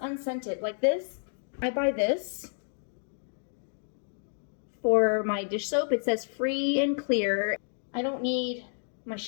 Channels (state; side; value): silent; right; digital silence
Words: Like this, I buy this for my dish soap. It says free and clear. I don't need my